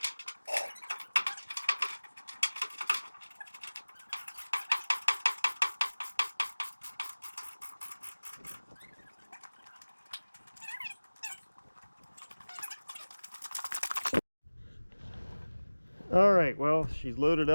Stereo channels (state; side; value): inverted; both; correlation -1.00